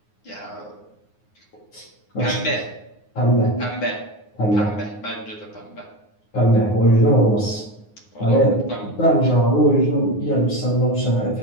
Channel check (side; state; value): right; late; 9.6 ms